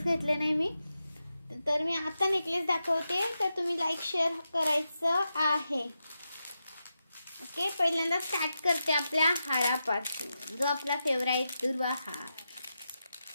घेतले नाही मी, तर मी आता नेकलेस दाखवते, तर तुम्ही लाईक शेअर करायचं आहे। ओके, पहिल्यांदा स्टार्ट करते आपल्या हारापासून, जो आपला फेवरेट दुर्वा हार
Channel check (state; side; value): inverted; both; correlation -0.88